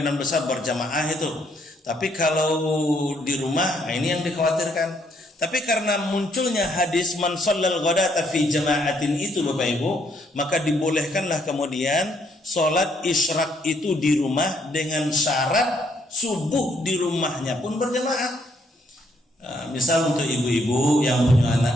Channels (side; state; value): both; normal; correlation 0.71